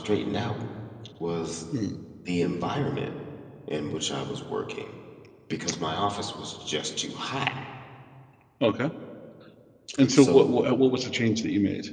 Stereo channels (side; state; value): both; identical; correlation 1.00